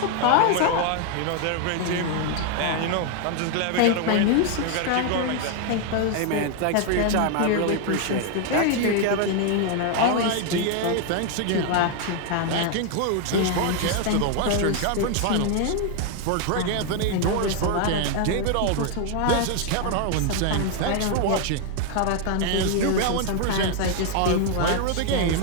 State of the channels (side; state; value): both; different; correlation 0.00